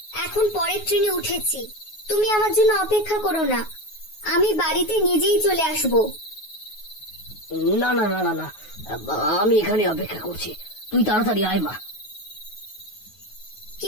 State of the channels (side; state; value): right; late; 9.4 ms